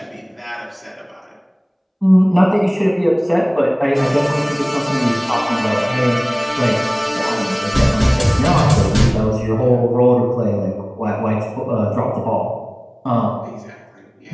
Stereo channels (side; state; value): both; identical; correlation 1.00